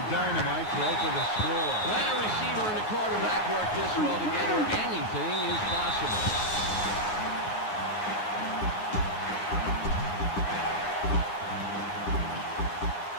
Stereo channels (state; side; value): late; right; 9.4 ms